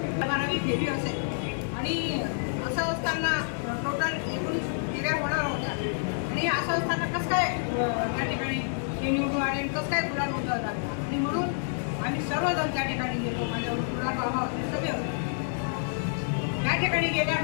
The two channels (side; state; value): right; silent; digital silence